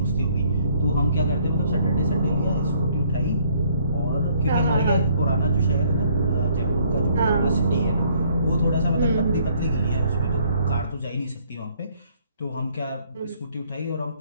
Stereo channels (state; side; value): inverted; both; correlation -0.64